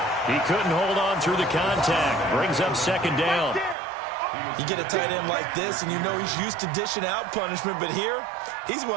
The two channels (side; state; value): left; drops out; at 3.8 s